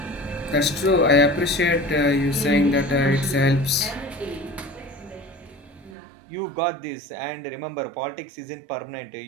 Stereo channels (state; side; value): drops out; left; at 6.0 s